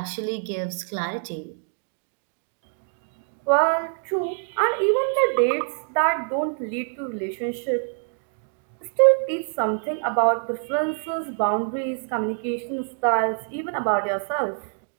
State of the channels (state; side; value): silent; left; 61 dB below the other